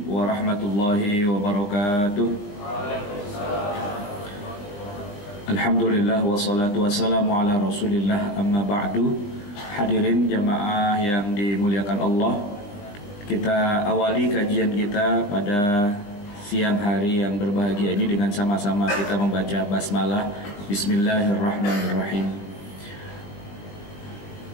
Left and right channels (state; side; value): late; right; 20 ms